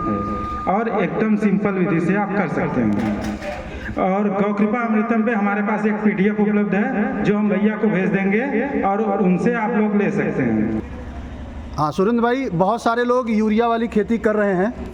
और एकदम सिंपल विधि से आप कर सकते हैं। और गौ कृपा अमृतम पे हमारे पास एक PDF उपलब्ध है जो हम भैया को भेज देंगे और उनसे आप लोग ले सकते हैं। हाँ सुरेंद्र भाई, बहुत सारे लोग यूरिया वाली खेती कर रहे हैं,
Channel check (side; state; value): both; identical; correlation 1.00